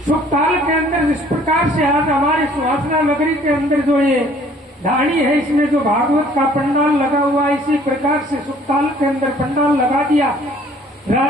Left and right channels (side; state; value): both; normal; correlation 0.57